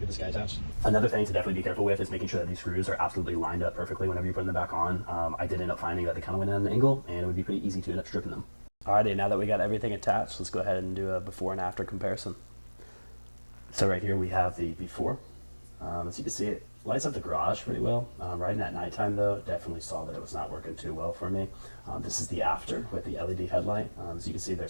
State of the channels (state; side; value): inverted; both; correlation -1.00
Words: this guy attached. Another thing to definitely be careful with is making sure that these screws are absolutely lined up perfectly whenever you're putting them back on. I did end up finding that they kind of went at an angle, and it would be pretty easy to end up stripping them. Alrighty, now that we got everything attached, let's go ahead and do a before and after comparison. So right here we have the before. As you can see, it lights up the garage pretty well. Riding at nighttime though, definitely saw that it was not working too well for me. This is the after with the LED headlight. As you can see,